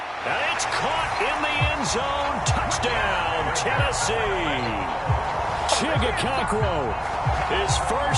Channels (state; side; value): identical; both; correlation 1.00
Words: And it's caught in the end zone. Touchdown, Tennessee. Chigakakro. His